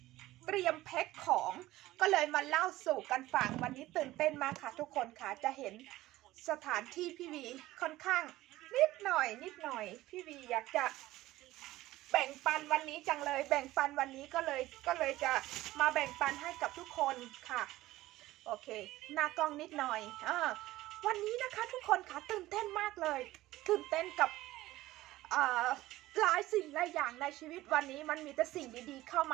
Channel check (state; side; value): quieter; left; 16.7 dB